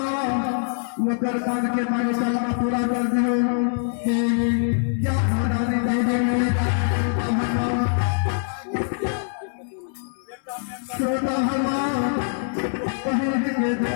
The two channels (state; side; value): silent; right; 61 dB below the other